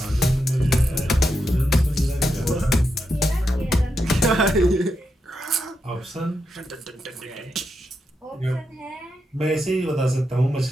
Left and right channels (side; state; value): both; normal; correlation 0.85